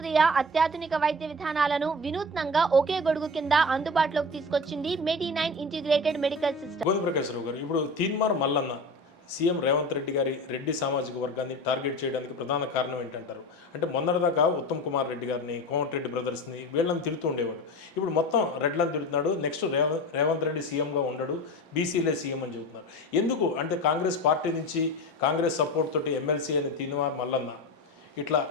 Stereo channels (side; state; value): both; normal; correlation 0.30